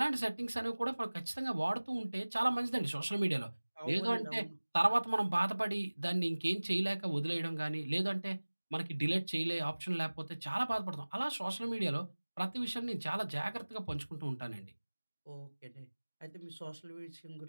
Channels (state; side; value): inverted; both; correlation -1.00